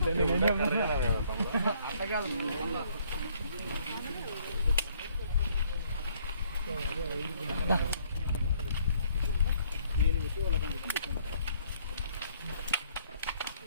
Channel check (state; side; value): inverted; both; correlation -0.63